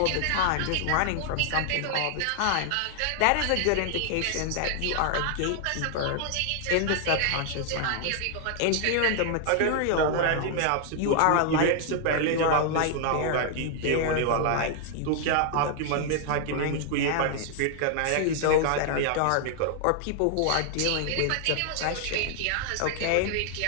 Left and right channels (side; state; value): both; different; correlation 0.00